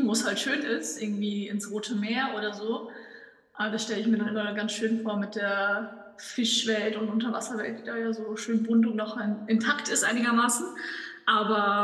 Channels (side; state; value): both; identical; correlation 1.00